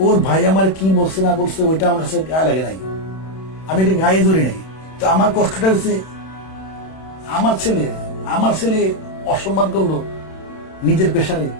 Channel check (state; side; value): late; right; 31 ms